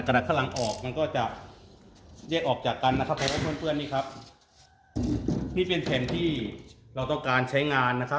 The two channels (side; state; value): both; identical; correlation 1.00